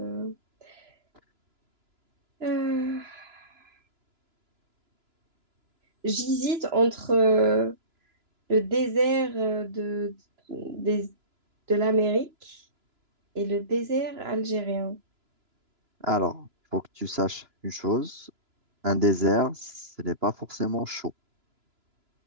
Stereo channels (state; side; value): late; left; 3.0 ms